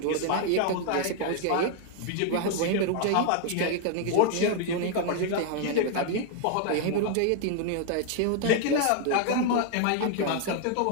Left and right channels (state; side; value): different; both; correlation 0.00